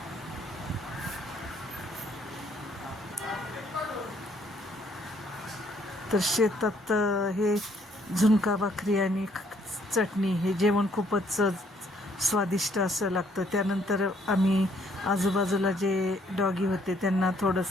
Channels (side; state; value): both; normal; correlation 0.66